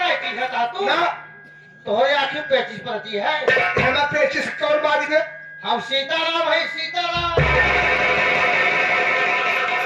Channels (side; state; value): both; identical; correlation 1.00